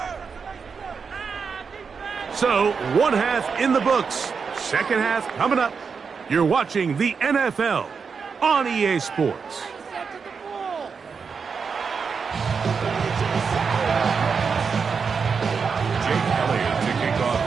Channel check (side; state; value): left; quieter; 5.6 dB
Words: So, one half in the books. Second half coming up. You're watching the NFL on EA Sports.